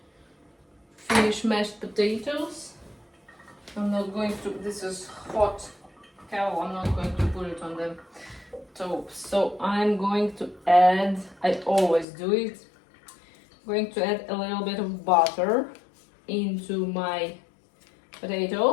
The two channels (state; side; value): drops out; right; at 12.1 s